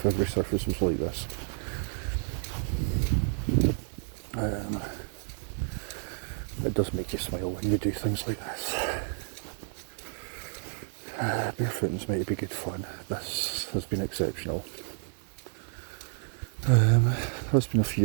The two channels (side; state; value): left; silent; 58 dB below the other